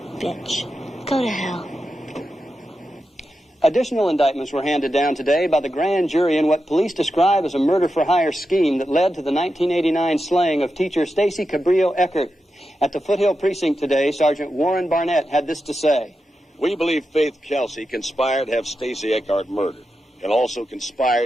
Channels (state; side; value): normal; both; correlation 0.89